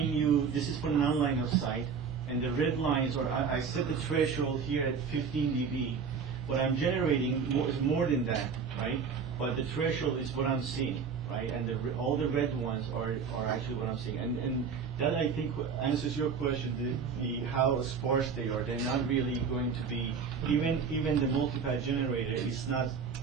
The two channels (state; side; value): quieter; left; 6.0 dB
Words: you, this is for non-line of sight, and the red lines are, I set the threshold here at 15 dB, what I'm generating is more than that, right? But the threshold is what I'm seeing, right? And all the red ones are actually what I'm seeing. And that, I think, answers your question, the how sparse they are. They're not really going to be, even the multipath generator is not